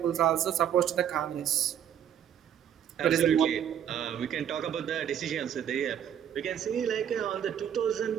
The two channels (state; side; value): quieter; left; 9.5 dB